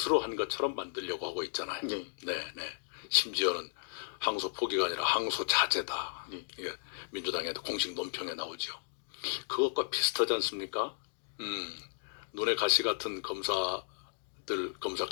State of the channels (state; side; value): silent; right; digital silence